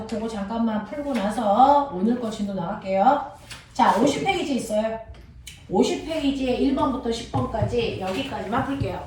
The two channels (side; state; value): both; identical; correlation 1.00